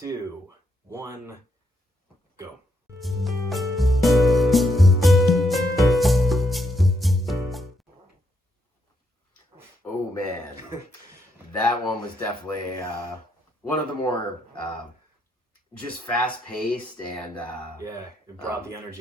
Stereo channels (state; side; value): normal; both; correlation 0.77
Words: 1, go. Oh man, that one was definitely one of the more just fast paced and it brought the